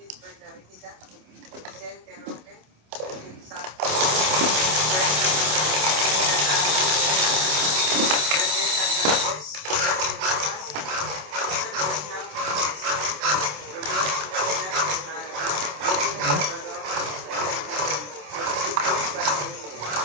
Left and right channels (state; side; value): late; left; 27 ms